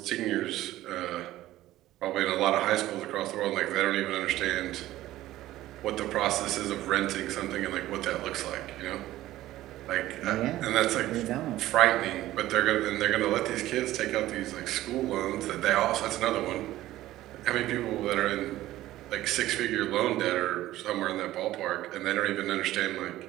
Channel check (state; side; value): quieter; left; 15.1 dB